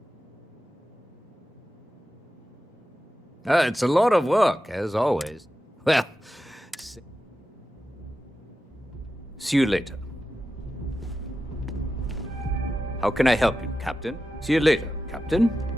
It's a lot of work, as always. Well, see you later. How can I help you, Captain? See you later, Captain.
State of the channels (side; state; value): both; normal; correlation 0.92